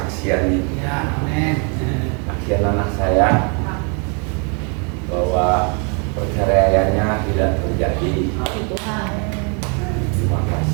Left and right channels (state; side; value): quieter; left; 37.1 dB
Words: nih. Ya, amin. Kesaksian anak saya bahwa perceraiannya tidak terjadi. Tuhan. Terima